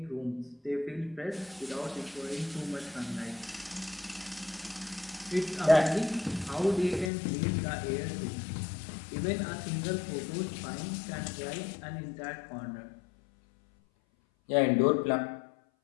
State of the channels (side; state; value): right; drops out; at 7.1 s